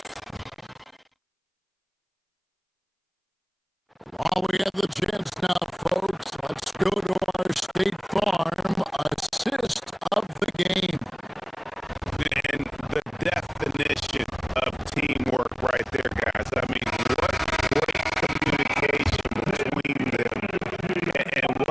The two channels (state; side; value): identical; both; correlation 1.00